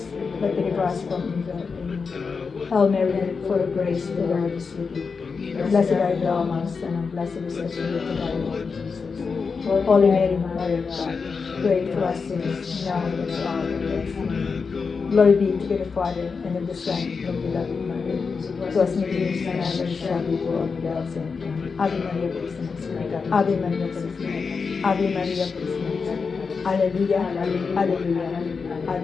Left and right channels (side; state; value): right; quieter; 5.1 dB